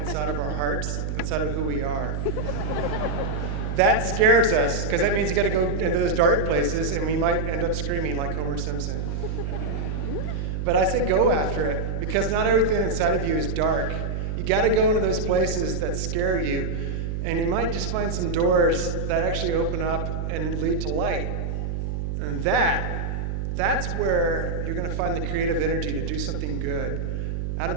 of our hearts, inside of who we are. That scares us, because that means you got to go into those dark places, and we might end up screaming like Homer Simpson. But I say go after it, because not everything inside of you is dark. You got to go into those places that scare you, and you might just find some doors that actually open up and lead to light. And that's where you're going to find the creative energy to do something good. Out of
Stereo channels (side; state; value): right; noise; hum, 2 dB below the sound